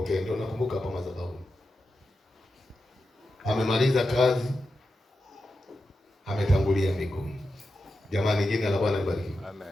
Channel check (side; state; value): both; normal; correlation 0.90